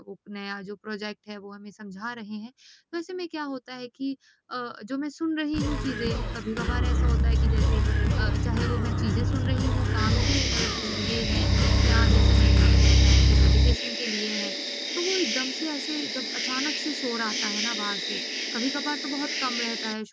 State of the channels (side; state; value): both; identical; correlation 1.00